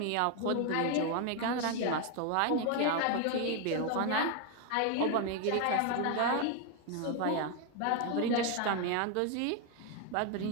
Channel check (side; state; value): both; different; correlation 0.01